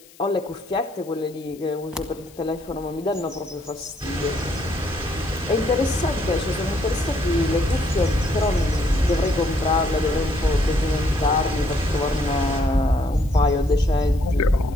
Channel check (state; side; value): noise; left; hiss, 25 dB below the sound